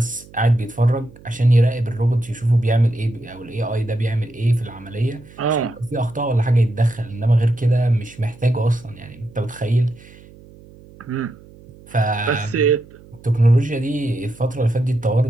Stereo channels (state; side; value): noise; right; hum, 22 dB below the sound